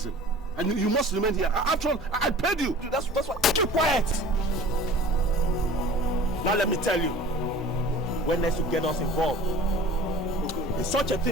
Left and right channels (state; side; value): normal; both; correlation 0.43